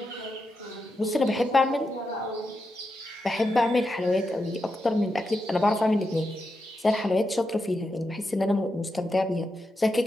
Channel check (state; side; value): normal; both; correlation 0.86